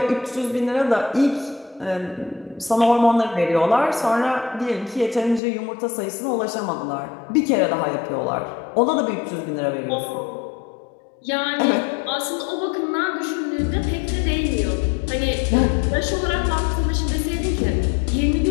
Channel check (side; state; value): right; drops out; at 5.4 s